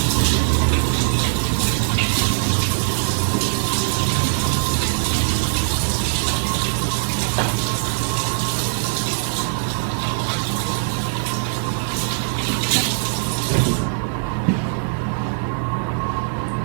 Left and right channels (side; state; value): left; silent; 55 dB below the other